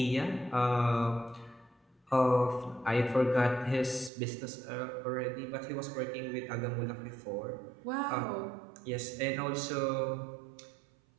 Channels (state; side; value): drops out; left; at 4.1 s